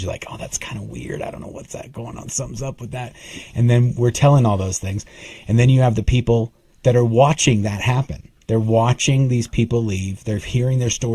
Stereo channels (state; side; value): identical; both; correlation 1.00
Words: like, oh, that's kind of weird. I don't know what's that going on. Something's up with that. And then we're telling all those things. And then you have the people that are watching that happen. They're watching these people leave. They're hearing their